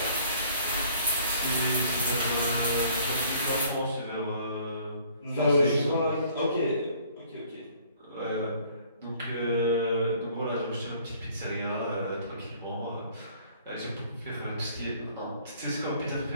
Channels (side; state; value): both; inverted; correlation -0.57